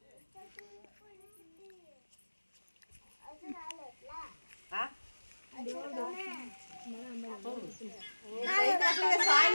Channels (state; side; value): inverted; both; correlation -1.00